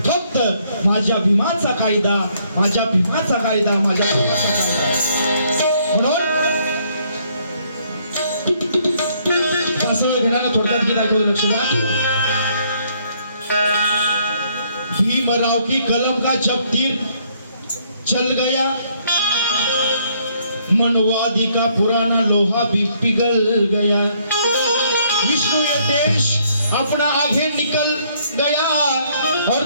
फक्त माझ्या भीमाचा कायदा, माझ्या भीमाचा कायदा, माझ्या भीमाचा कायदा. म्हणून घराला थोडक्यात गीत ऐकू लक्ष द्या. भीमराव की कलम का जब तीर चल गया, मनवादी का पुराना लोहा भी पिघल गया. विष्णु ये देश अपना आगे निकल गया और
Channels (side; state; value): both; inverted; correlation -0.68